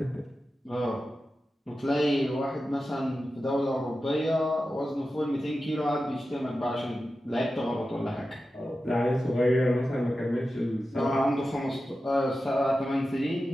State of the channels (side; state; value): both; normal; correlation 0.92